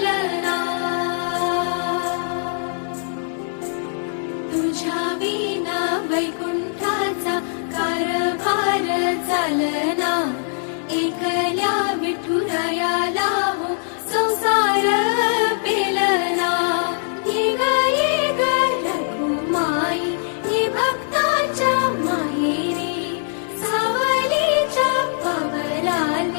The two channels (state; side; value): silent; right; 65 dB below the other